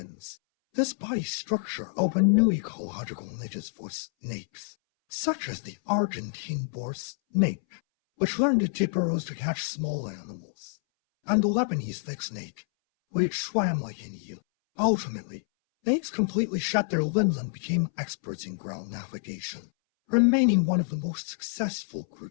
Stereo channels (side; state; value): right; silent; 59 dB below the other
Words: This body structure opened new ecological niches for snakes, such as the Argentine boar snake, which learned to dip burrows to catch small animals, and the Lebanese thick snake, which swam like an eel. Ultimately, snakes completely shed their limbs and became experts in ground navigation, remaining one of the most successful